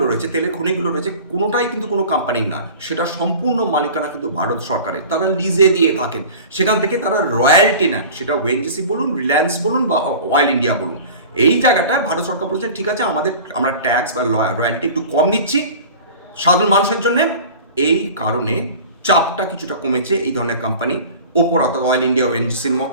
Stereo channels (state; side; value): inverted; both; correlation -0.39